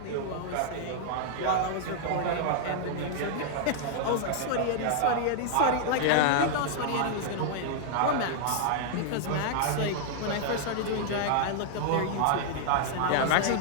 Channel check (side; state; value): both; different; correlation -0.01